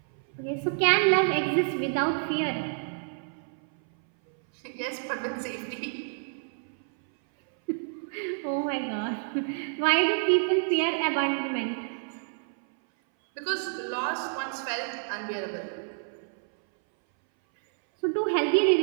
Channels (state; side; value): silent; left; 59 dB below the other